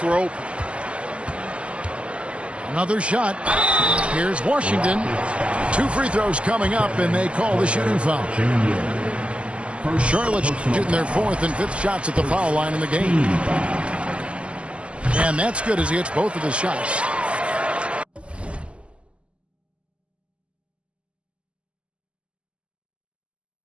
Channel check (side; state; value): left; late; 0.056 ms